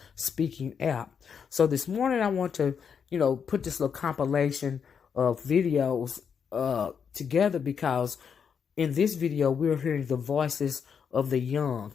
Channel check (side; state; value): right; quieter; 6.9 dB